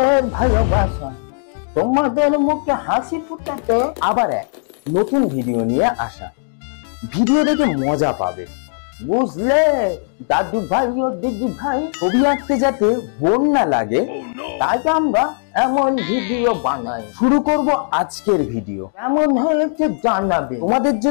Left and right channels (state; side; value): silent; right; digital silence